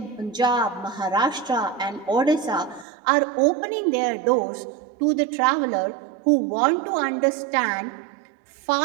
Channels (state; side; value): drops out; left; at 2.9 s